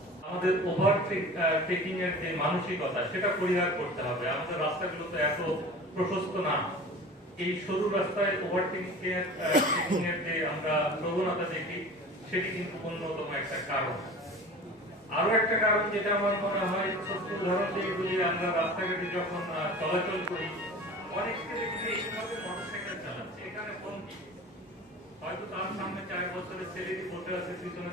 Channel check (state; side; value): normal; both; correlation 0.38